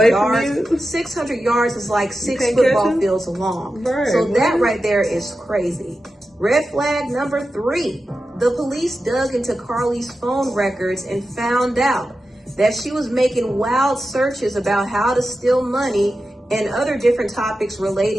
yards? 600 yards is like 6 football fields long. So that right there is crazy. Red flag number three, the police dug into Carlee's phone records and found out that she was making wild searches about how to steal money and other different topics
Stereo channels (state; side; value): normal; both; correlation 0.92